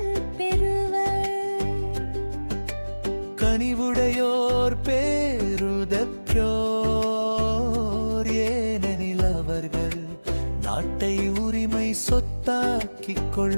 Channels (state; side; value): inverted; both; correlation -1.00